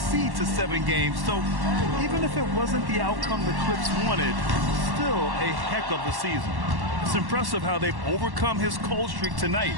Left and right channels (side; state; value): left; late; 1.1 ms